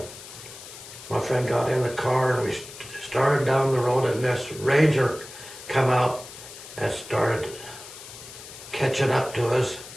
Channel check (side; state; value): left; noise; hiss, 15 dB below the sound